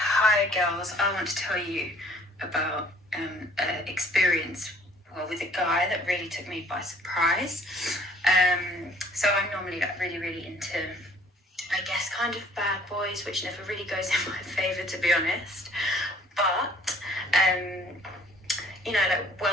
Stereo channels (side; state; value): both; normal; correlation 0.57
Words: girls, I want to tell you about an experience with a guy that really took me by surprise. So I'm normally like really into, I guess, kind of bad boys, which never really goes in my favour, to be honest. But you know, like